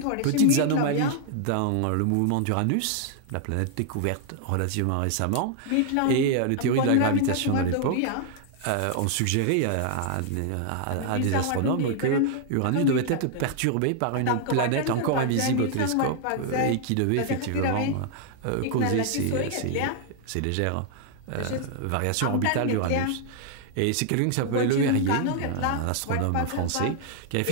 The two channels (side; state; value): both; different; correlation 0.00